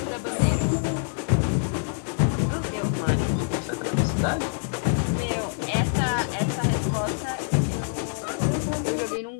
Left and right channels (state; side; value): silent; right; digital silence